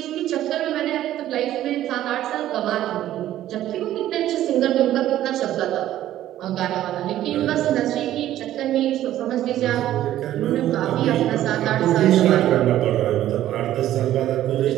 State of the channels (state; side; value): quieter; left; 13.0 dB